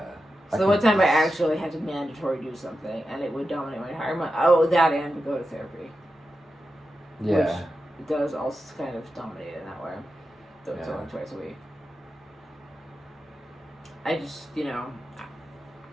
So the one time I actually had to mandatory do something, and it would dominate my entire month. Oh, that and to go to therapy. Yeah. Which it does also kind of dominate in that way. Though it's only twice a week. I just,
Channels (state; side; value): normal; both; correlation 0.90